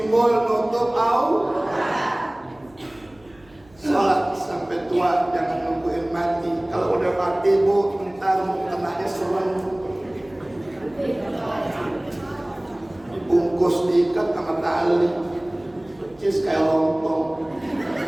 nutup aurat. Sholat sampai tua, jangan nungguin mati. Kalau udah mati Bu, ntar mukenanya serem, dibungkus diikat sama tali, percis kayak lontong.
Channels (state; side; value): noise; right; hum, 29 dB below the sound